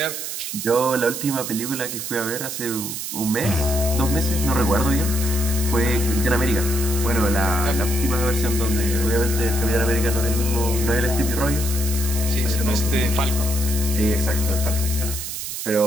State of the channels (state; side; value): noise; right; hiss, 6 dB below the sound